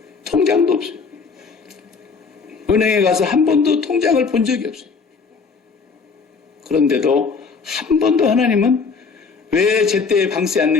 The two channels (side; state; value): right; quieter; 5.1 dB